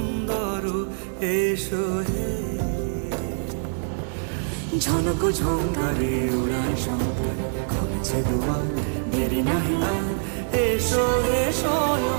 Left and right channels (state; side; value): silent; left; digital silence